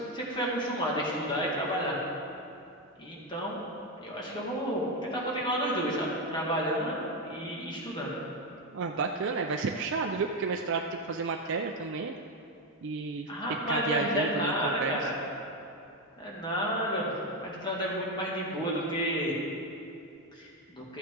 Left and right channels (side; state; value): both; normal; correlation 0.09